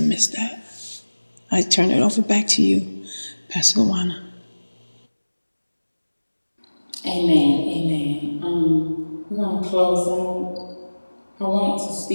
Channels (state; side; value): inverted; both; correlation -1.00